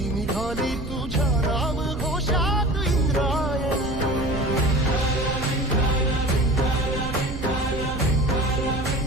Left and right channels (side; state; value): right; noise; rumble, 9 dB below the sound